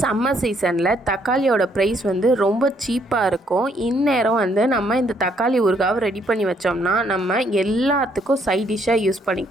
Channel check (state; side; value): normal; both; correlation 0.69